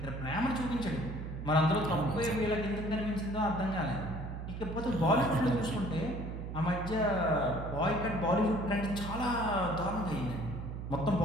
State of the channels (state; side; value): noise; right; hum, 7 dB below the sound